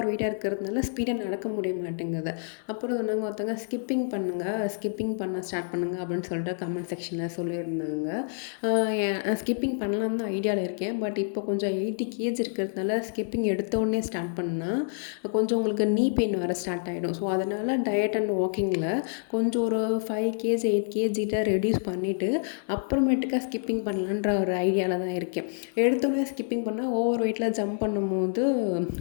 வெயிட்டாக இருக்கிறதுனால ஸ்பீடாக நடக்க முடிய மாட்டேங்குது. அப்புறம் சொன்னாங்க ஒருத்தவங்க, ஸ்கிப்பிங் பண்ண ஸ்டார்ட் பண்ணுங்கள் அப்படின்னு சொல்லிட்டு கமெண்ட் செக்ஷனில் சொல்லியிருந்தாங்க. ஸ்கிப்பிங் பண்ணலான்னு தான் ஐடியாவில் இருக்கேன். பட் இப்போ கொஞ்சம் 80 kg இருக்கிறதுனால ஸ்கிப்பிங் எடுத்த உடனே ஸ்டார்ட் பண்ணால் கொஞ்சம் உங்களுக்கு நீ பெயின் வர ஸ்டார்ட் ஆகிடும். ஸோ அதனால் டயட் அண்ட் வாக்கிங்கில் கொஞ்சம் ஒரு 5 kg 8 kg ரெடியூஸ் பண்ணிவிட்டு அப்புறமேட்டுக்கா ஸ்கிப்பிங் பண்ணலான்ற ஒரு ஐடியாவில் தான் இருக்கேன். எடுத்தோடனே ஸ்கிப்பிங் பண்ணால் ஓவர் வெயிட்டில் ஜம்ப் பண்ணும்போது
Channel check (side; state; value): right; silent; digital silence